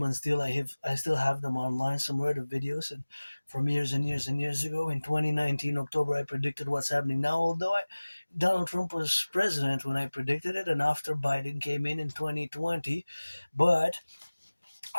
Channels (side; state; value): both; inverted; correlation -1.00